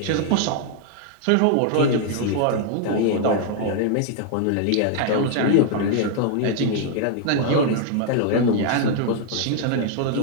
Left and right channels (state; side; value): different; both; correlation 0.00